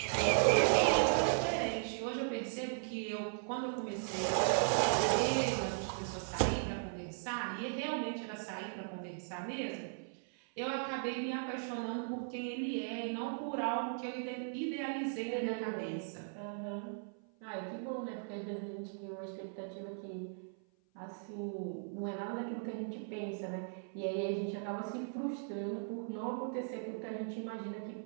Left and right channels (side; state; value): left; silent; 53 dB below the other